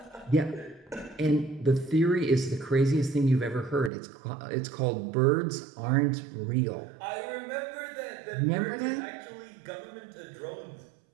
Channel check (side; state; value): left; drops out; at 3.9 s